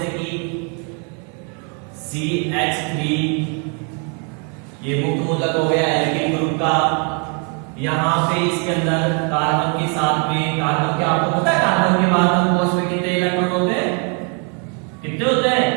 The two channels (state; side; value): quieter; left; 38.0 dB